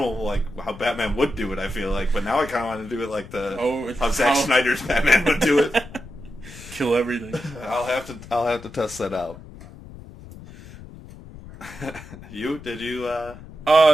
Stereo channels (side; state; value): left; noise; rumble, 16 dB below the sound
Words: how Batman would do it, I feel but now I kind of want to do it how Zack Snyder's Batman would do it. Kill everything. I'll have to test that out. Did you,